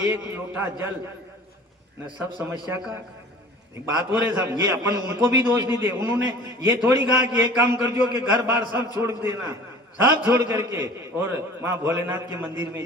लोटा जल न सब समस्या का एक बात हो रहे साहब। ये अपन उनको भी दोष नहीं दे, उन्होंने ये थोड़ी कहा कि एक काम कर जो कि घर बार सब छोड़ देना, सब छोड़ करके और वहां भोलेनाथ के मंदिर में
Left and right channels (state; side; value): normal; both; correlation 0.44